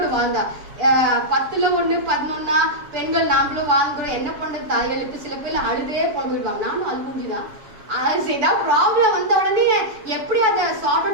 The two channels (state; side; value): late; left; 6.8 ms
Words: வாழ்ந்தா. 10ல் 1 11 பெண்கள் நாமளும் வாழ்ந்துடும், என்ன பண்றது தாய்களுக்கு. சில பேர் அழுதே போடுவாங்க, நானும் அழுகுஞ்சுதான். ஏதாவது ப்ராப்ளம் வந்த உடனே எப்படி அதை சார்ட்